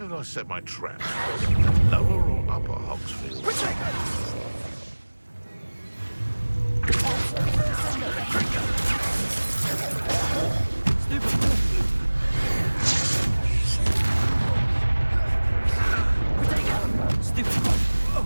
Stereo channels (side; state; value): both; inverted; correlation -1.00